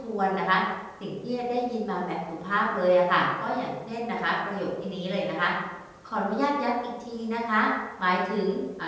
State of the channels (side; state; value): both; identical; correlation 1.00